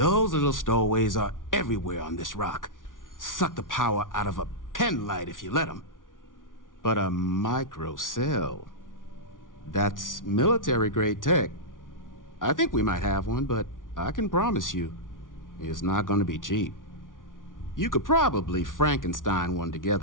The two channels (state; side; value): late; right; 0.88 ms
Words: little stowaways are everywhere on this rock. Suck the power out of a pen light if you let them. But a microcell, that's military-grade tech. I think we might have one, but I can promise you, it's not gonna be cheap. You could probably Frankenstein one